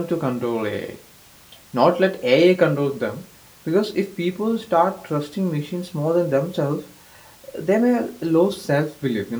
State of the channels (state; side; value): identical; both; correlation 1.00